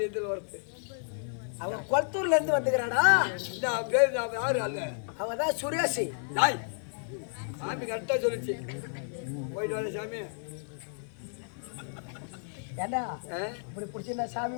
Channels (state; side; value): silent; right; 55 dB below the other